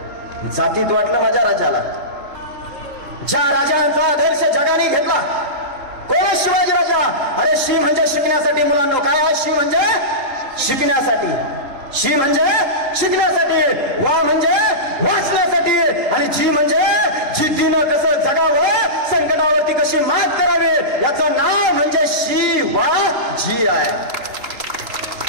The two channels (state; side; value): late; left; 3.7 ms